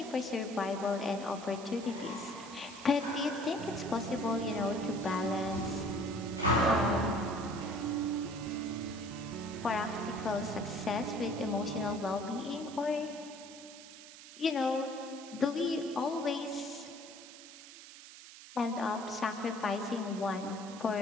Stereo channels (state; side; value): noise; right; hiss, 16 dB below the sound